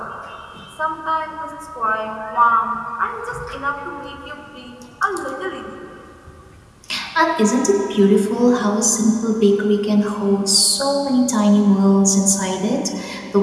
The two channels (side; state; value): both; identical; correlation 1.00